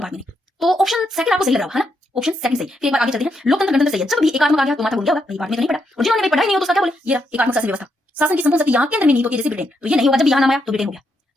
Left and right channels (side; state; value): both; normal; correlation 0.80